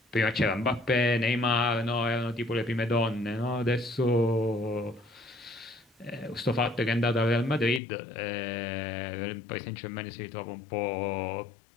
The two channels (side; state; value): right; drops out; at 7.8 s